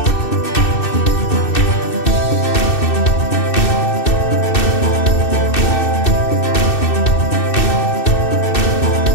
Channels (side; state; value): right; late; 2.6 ms